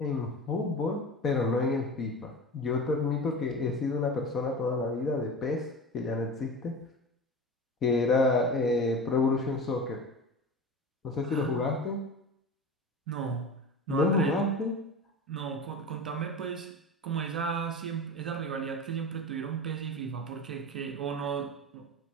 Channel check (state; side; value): normal; both; correlation 0.31